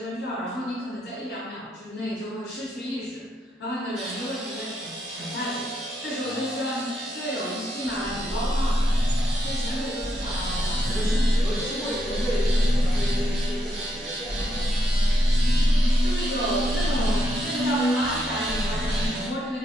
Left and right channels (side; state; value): both; normal; correlation 0.78